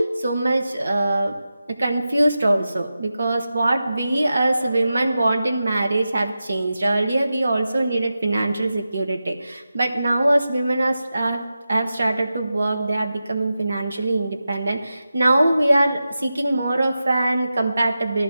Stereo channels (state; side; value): inverted; both; correlation -0.92